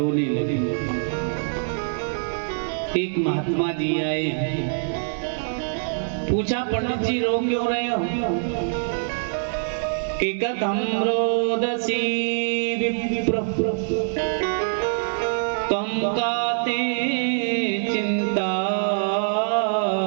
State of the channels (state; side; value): silent; left; digital silence